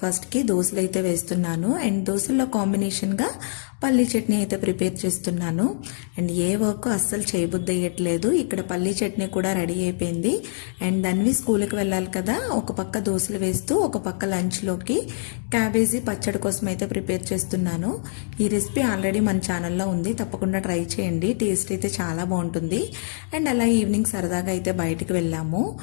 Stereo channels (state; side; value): silent; right; 62 dB below the other